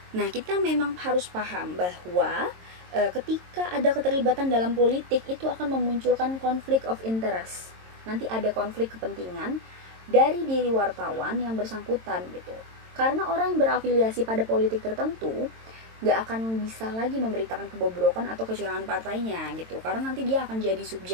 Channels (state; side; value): late; left; 22 ms